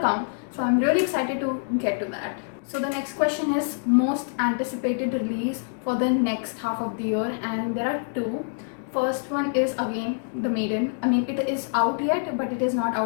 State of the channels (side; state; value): right; silent; digital silence